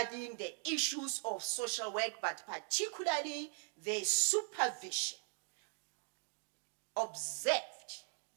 the issues of social work, but particularly the supervision, observed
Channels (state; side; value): silent; left; 51 dB below the other